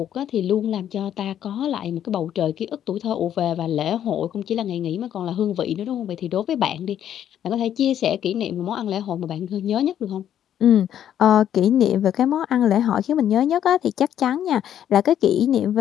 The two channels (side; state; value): right; quieter; 10.3 dB